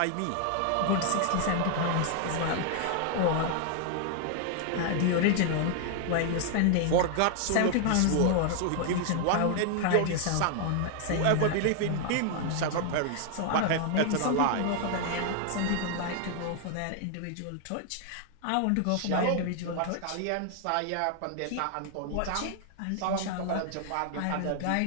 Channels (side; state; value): both; different; correlation 0.00